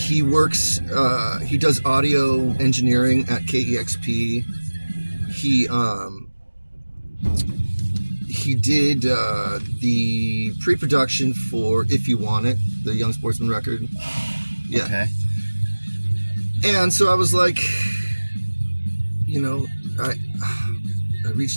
works. He does audio engineering at KEXP. He did the pre-production for If You Want It, the Young Sportsman record. Yeah. Okay. And so I was like, I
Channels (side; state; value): both; inverted; correlation -1.00